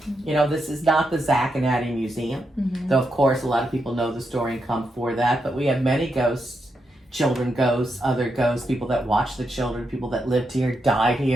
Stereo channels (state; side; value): normal; both; correlation 0.83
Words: You know, this is not the Zach and Addie Museum. Though, of course, a lot of people know the story and come for that. But we have many ghosts, children ghosts, other ghosts, people that watch the children, people that lived here, died